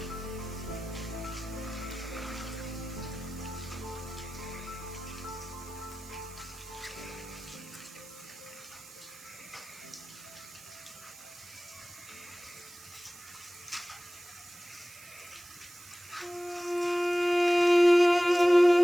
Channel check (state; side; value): noise; right; hiss, 18 dB below the sound